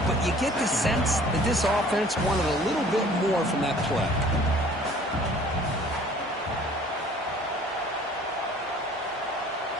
but you get the sense that this offense wanted a little bit more from that play.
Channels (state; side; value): normal; both; correlation 0.52